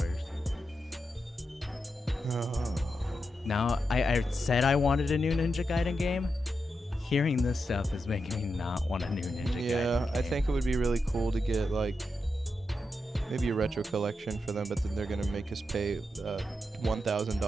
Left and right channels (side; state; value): both; normal; correlation 0.87